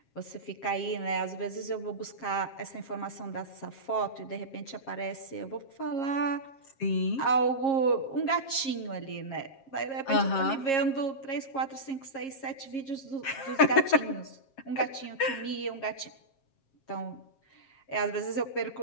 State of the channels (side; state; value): right; late; 7.4 ms